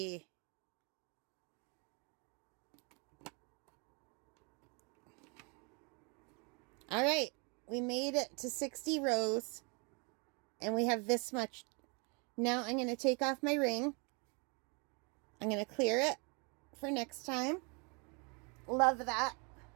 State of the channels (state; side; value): quieter; left; 32.9 dB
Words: All right. We made it to 60 rows. And we have this much. Now I'm going to take off my ring. I'm going to clear it for next time. Love that.